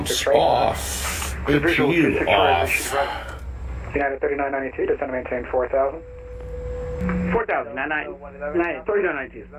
off. APU off. United 3992, descend and maintain 4000. 4000, 3992.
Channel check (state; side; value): identical; both; correlation 1.00